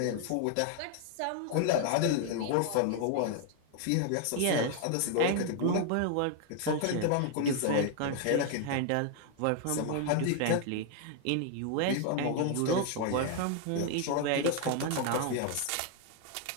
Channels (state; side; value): different; both; correlation 0.00